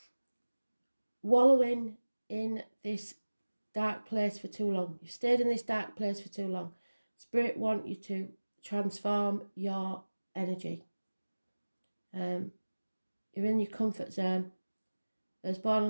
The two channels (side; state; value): both; inverted; correlation -1.00